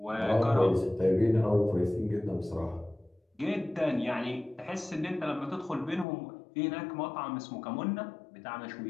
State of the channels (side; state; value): right; drops out; at 6.1 s